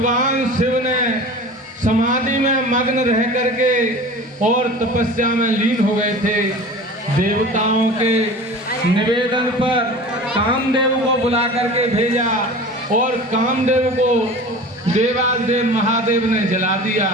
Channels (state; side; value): normal; both; correlation 0.38